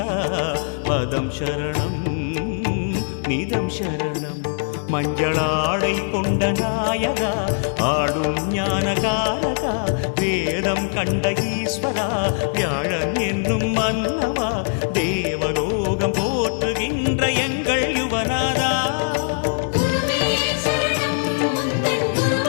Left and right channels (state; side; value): silent; right; digital silence